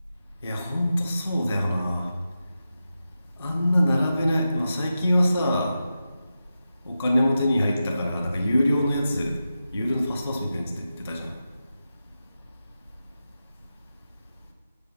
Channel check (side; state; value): both; inverted; correlation -0.91